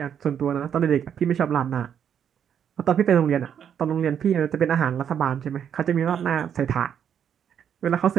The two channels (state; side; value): quieter; left; 8.6 dB